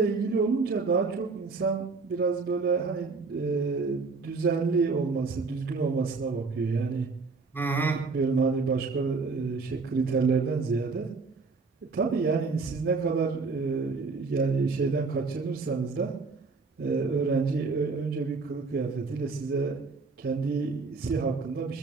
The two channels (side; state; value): left; quieter; 4.3 dB